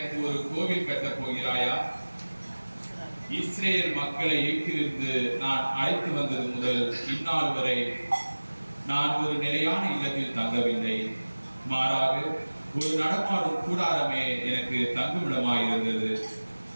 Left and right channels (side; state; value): both; inverted; correlation -1.00